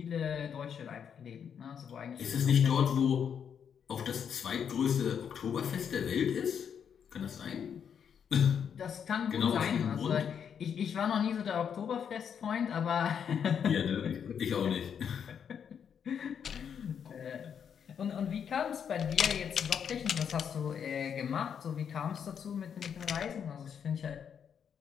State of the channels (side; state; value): right; quieter; 7.7 dB